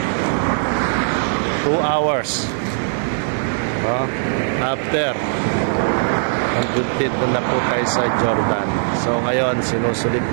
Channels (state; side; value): silent; left; 66 dB below the other